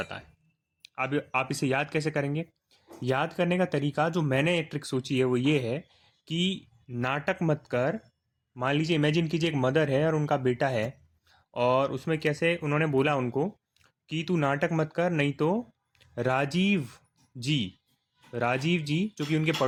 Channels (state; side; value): identical; both; correlation 1.00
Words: है। अब आप इसे याद कैसे करेंगे? याद करने का तरीका जो मैंने एक ट्रिक सोची है वो ये है कि नाटक मत कर। मान लीजिए, इमेजिन कीजिए एक मदर है और उनका बेटा है, और उसमें कैसे उन्होंने बोला उनको कि तू नाटक मत कर, नहीं तो राजीव जी राजीव जी जो कि उनके